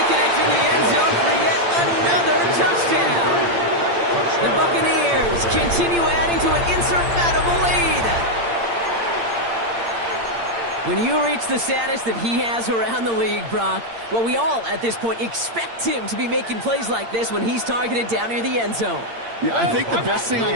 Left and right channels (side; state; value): left; late; 8.7 ms